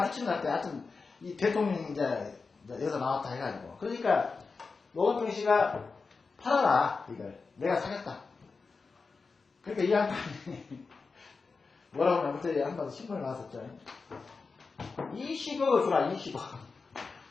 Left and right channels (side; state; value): right; quieter; 4.5 dB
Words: 끼치는 것 같아. 하여튼 이 대통령이 이제 여기서 나왔다 해가지고 그러니까 노건평 씨가 팔아라 이걸 내가 사겠다. 그러니까 이 양반이 뭐라고 하면 그때 한번 신문에 나왔었죠. 20억을 주라 20억.